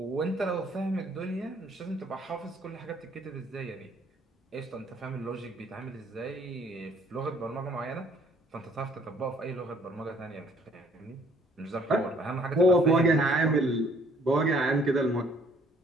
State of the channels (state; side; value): normal; both; correlation 0.61